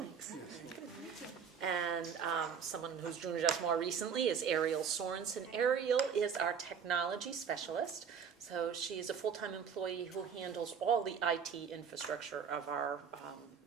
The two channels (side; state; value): left; quieter; 6.9 dB